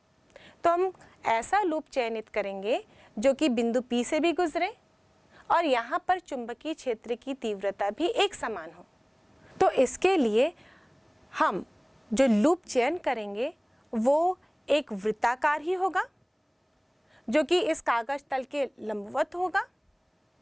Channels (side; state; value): both; identical; correlation 1.00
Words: तो हम ऐसा लूप चयनित करेंगे जो कि बिंदु P से भी गुजरे और यहाँ पर चुंबकीय क्षेत्र की तीव्रता भी एक समान हो। तो इसके लिए हम जो लूप चयन करेंगे वो एक वृत्ताकार ही होगा, जो कि इस कागज तल के लंबवत होगा,